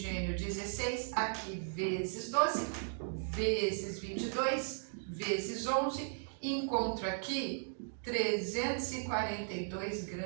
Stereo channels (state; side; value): silent; left; digital silence